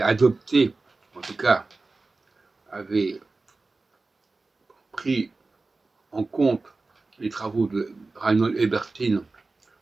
adopté, en tout cas, avait pris en compte les travaux de Reinhold Ebertin,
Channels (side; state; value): left; quieter; 3.5 dB